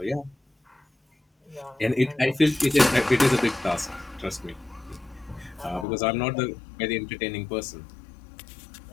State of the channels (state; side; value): drops out; right; at 5.9 s